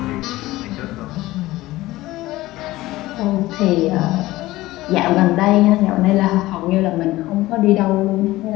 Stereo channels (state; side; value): quieter; right; 17.6 dB